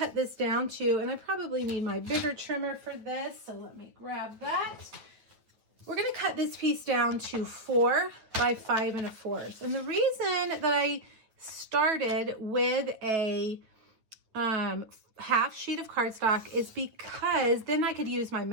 this down too, and I probably need my bigger trimmer for this, so let me grab that. We're going to cut this piece down to 4 by 5 1/4. And the reason that I started with a half sheet of cardstock is because then I could use my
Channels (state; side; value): late; left; 9.2 ms